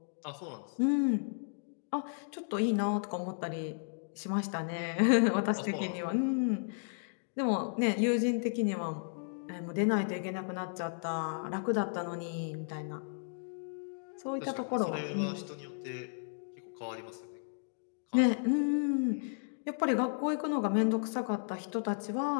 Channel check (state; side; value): silent; right; digital silence